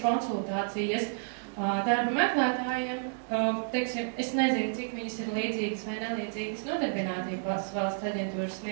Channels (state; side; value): silent; left; digital silence